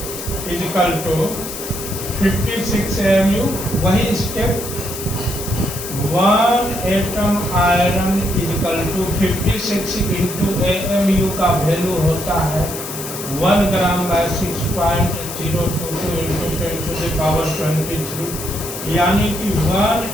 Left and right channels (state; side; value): noise; left; hiss, 8 dB below the sound